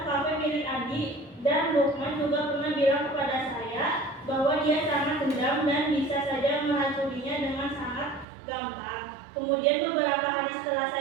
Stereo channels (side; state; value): left; drops out; at 8.2 s